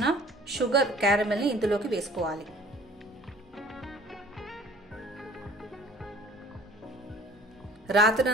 షుగర్ క్యారమెల్ని ఇందులోకి వేసుకోవాలి.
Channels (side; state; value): both; normal; correlation 0.50